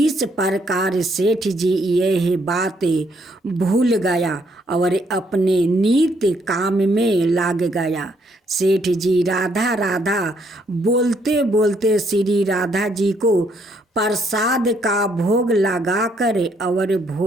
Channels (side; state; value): both; normal; correlation 0.70